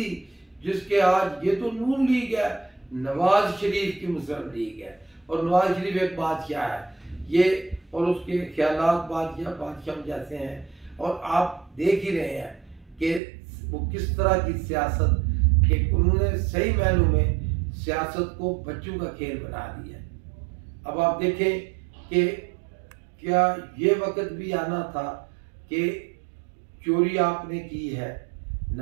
जिसके आज, ये तो नून लीग है, नवाज शरीफ की मुस्लिम लीग है, और नवाज शरीफ एक बादशाह है ये, और उसके ख्यालात बादशाह जैसे हैं। और आप देख ही रहे हैं कि वो किस तरह की सियासत, कि उन्होंने सही मायनों में सियासत को बच्चों का खेल बना दिया है। अब आप देखें कि क्या ये वक्त भी आना था कि चोरी आपने की है,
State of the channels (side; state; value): left; drops out; at 13.2 s